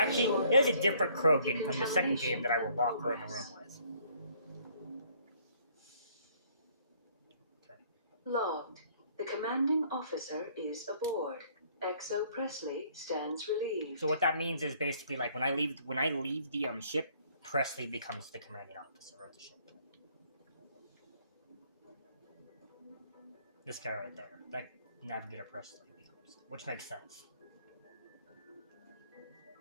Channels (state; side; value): inverted; both; correlation -0.62